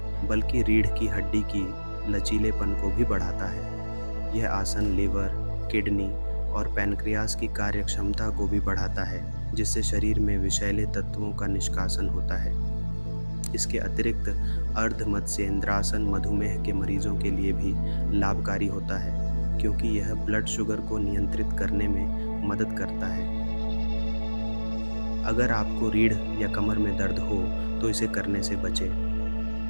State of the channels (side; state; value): both; inverted; correlation -1.00